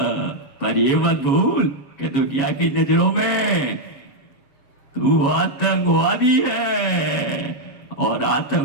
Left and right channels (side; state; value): right; late; 7.4 ms